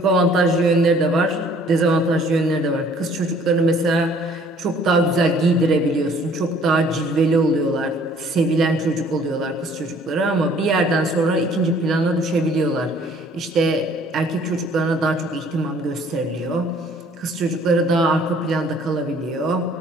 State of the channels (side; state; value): both; normal; correlation 0.57